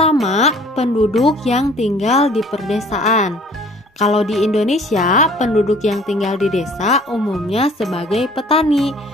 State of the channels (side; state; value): both; normal; correlation 0.53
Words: penduduk yang tinggal di perdesaan. Kalau di Indonesia, penduduk yang tinggal di desa umumnya sebagai petani.